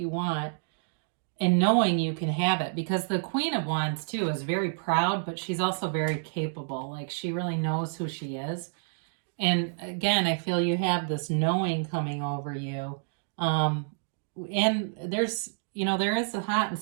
want, and knowing you can have it, because the Queen of Wands too is very proud, but she's also very capable. Like, she really knows who she is. And again, I feel you have this knowing coming over you. And there's, there is a hot and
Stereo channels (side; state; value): left; silent; digital silence